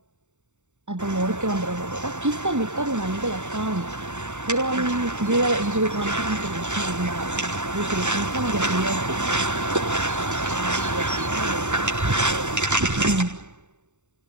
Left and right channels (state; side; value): late; left; 0.84 ms